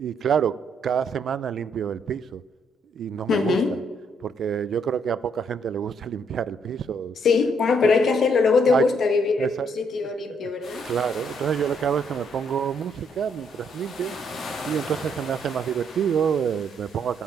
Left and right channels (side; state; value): both; normal; correlation 0.71